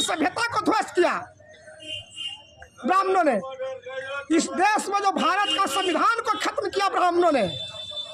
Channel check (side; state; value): both; identical; correlation 1.00